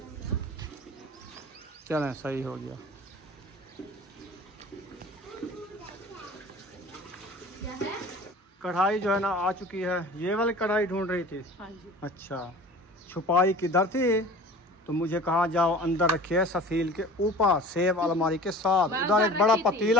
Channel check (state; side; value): normal; both; correlation 0.42